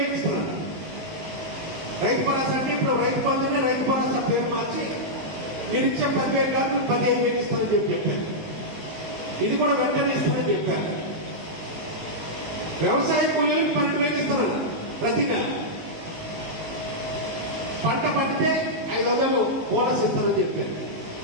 ఇస్తున్నారు. రైతు భరోసా అంటే ఇప్పుడు రైతు బంధునే రైతు భరోసా పేరు మార్చి మీరు ఇచ్చే 10,000 కాదు 15,000 ఇస్తామని చెప్పారు. ఇది కూడా వెంటనే ఇస్తామని చెప్పారు. వ్యవసాయ కూలీలకు 12,000 ఇస్తారు ప్రతి నెల. పంట పండితే 500 బోనస్ ఇస్తామని చెప్పారు.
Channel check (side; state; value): left; late; 19 ms